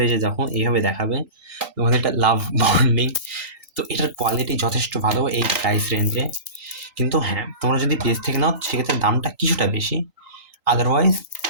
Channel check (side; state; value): left; late; 3.8 ms